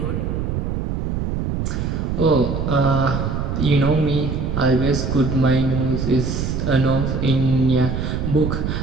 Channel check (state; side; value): noise; right; rumble, 2 dB below the sound